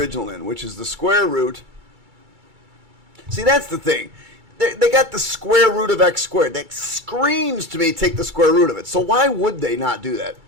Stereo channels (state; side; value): late; left; 2.3 ms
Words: in, which is the square root. See, that's the thing. They got the square root of x squared. That screams to me, take the square root of it. So why would they not do that?